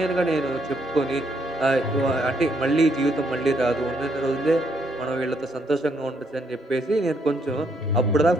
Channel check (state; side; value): normal; both; correlation 0.72